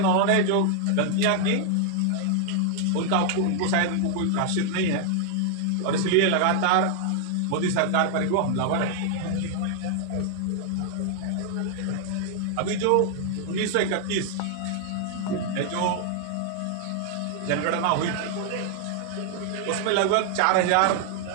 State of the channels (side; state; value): both; different; correlation 0.00